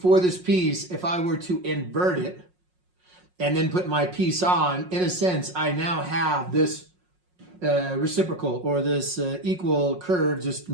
this piece, if I were to invert it and then put my piece on, in a sense, I now have this reciprocal or this equal curve, just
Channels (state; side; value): late; left; 5.5 ms